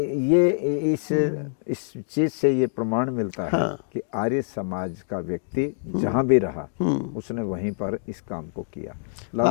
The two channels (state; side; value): silent; right; digital silence